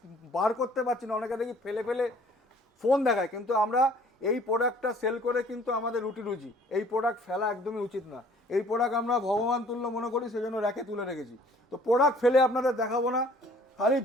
বার করতে পারছি না। অনেকে দেখি ফেলে ফেলে ফোন দেখায়, কিন্তু আমরা এই প্রোডাক্টটা সেল করে কিন্তু আমাদের রুটি রুজি। এই প্রোডাক্ট ফেলা একদমই উচিত না। এই প্রোডাক্ট আমরা ভগবান তুল্য মনে করি, সেজন্য র্যাকে তুলে রেখেছি। তো প্রোডাক্ট ফেলে আপনাদের দেখাবো না, খালি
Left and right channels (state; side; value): normal; both; correlation 0.55